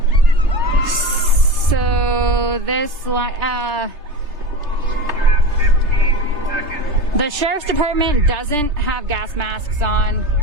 So this the sheriff's department doesn't have gas masks on,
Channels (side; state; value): left; late; 3.3 ms